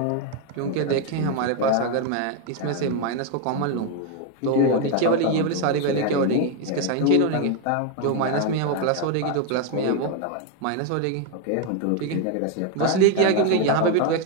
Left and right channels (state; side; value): different; both; correlation 0.01